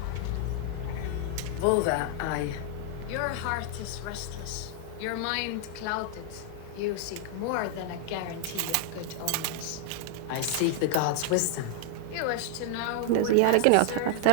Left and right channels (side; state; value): both; different; correlation -0.01